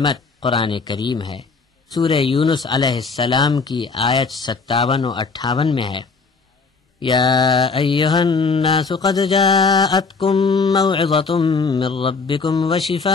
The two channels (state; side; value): quieter; right; 4.6 dB